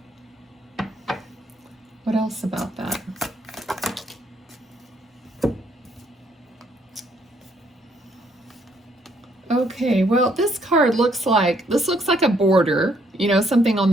What else about that? Okay, well, this card looks like a border, you know, something on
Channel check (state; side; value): normal; both; correlation 0.69